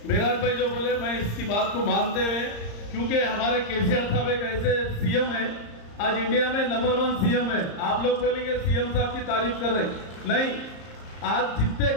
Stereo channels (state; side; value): late; right; 34 ms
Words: मेराज भाई जो बोले मैं इसकी बात को मानते हुए, क्योंकि हमारे KCR साहब एक ऐसे CM है, आज इंडिया में नंबर 1 CM है। आप लोग बोलेंगे CM साहब की तारीफ कर रहे, नहीं, आज जितने